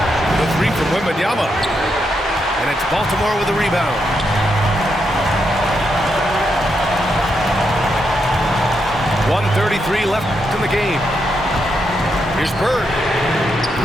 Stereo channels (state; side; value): normal; both; correlation 0.81